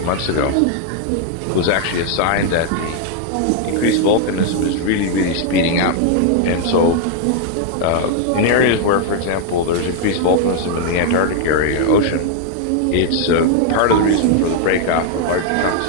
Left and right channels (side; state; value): both; different; correlation 0.00